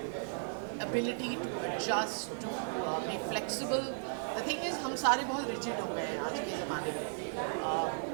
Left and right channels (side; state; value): left; silent; digital silence